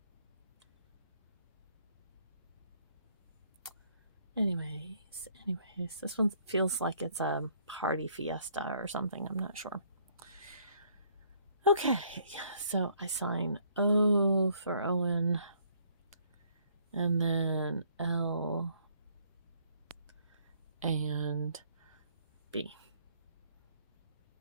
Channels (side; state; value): both; inverted; correlation -0.65